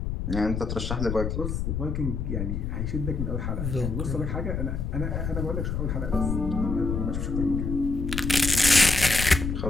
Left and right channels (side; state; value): left; noise; rumble, 2 dB below the sound